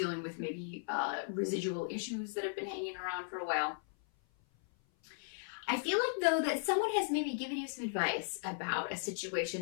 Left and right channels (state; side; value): silent; right; 53 dB below the other